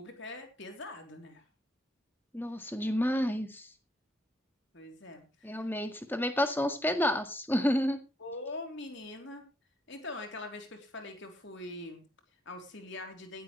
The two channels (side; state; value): both; normal; correlation 0.74